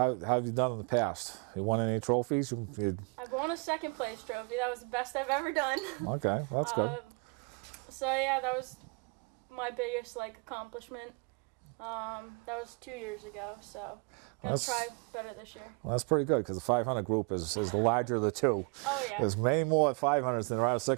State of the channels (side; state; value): left; quieter; 34.2 dB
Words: have you done in the past? You won any trophies? I've won a second place trophy. That was the best I've ever done. Okay, well, that's good. So yeah, that was my biggest accomplishment. That was 2 years ago. So gonna try better this year. Well, that's pretty good because the 500 group is the larger of the two. Oh yeah. There's many more 500s than there are